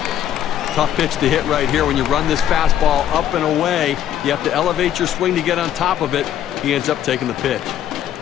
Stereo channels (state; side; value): quieter; right; 10.7 dB